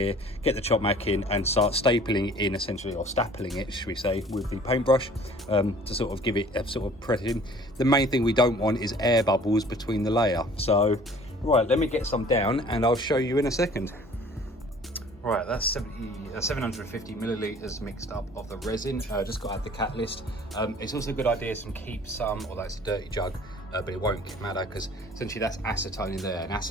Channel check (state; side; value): normal; both; correlation 0.51